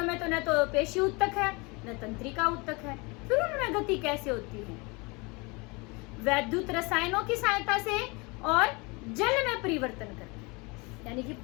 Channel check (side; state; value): right; quieter; 27.5 dB